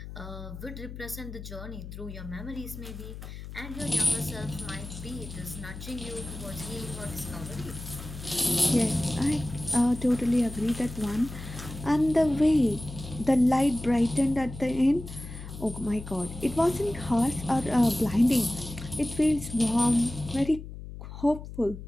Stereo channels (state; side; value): noise; left; hum, 11 dB below the sound